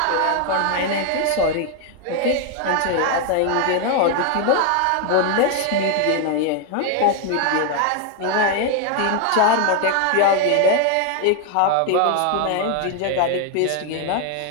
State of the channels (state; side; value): different; both; correlation 0.01